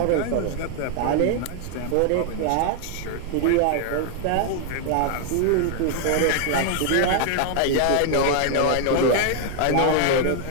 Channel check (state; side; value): different; both; correlation 0.00